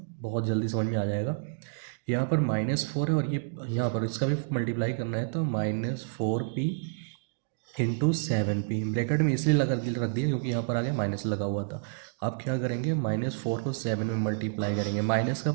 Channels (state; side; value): silent; left; digital silence